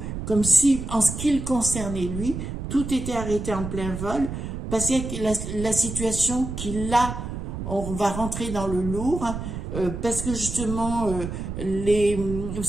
Comme si, en ce qui le concernait lui, tout était arrêté en plein vol, parce que la situation qu'il a, on va rentrer dans le lourd, parce que justement, vous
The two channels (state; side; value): noise; right; rumble, 6 dB below the sound